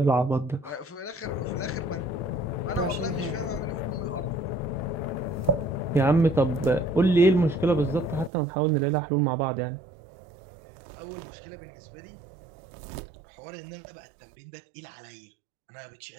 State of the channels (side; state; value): left; drops out; at 8.3 s